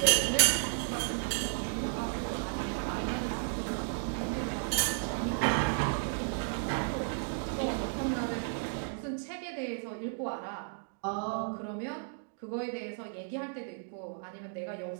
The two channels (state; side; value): silent; left; digital silence